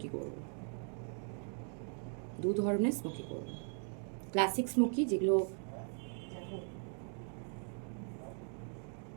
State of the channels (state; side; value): silent; left; 52 dB below the other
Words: করব। দু ধরনের স্মোকি করব। ক্লাসিক স্মোকি যেগুলো